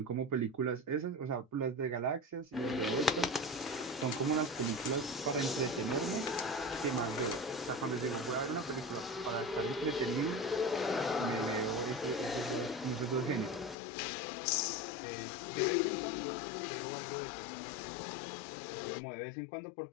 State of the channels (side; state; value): right; drops out; at 13.8 s